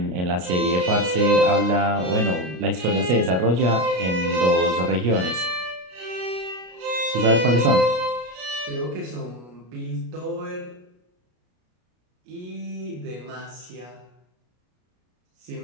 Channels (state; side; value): late; left; 33 ms